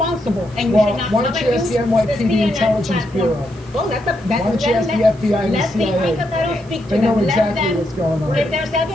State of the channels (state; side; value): noise; right; hiss, 26 dB below the sound